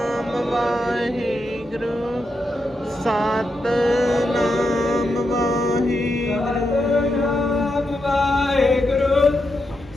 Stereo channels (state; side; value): normal; both; correlation 0.85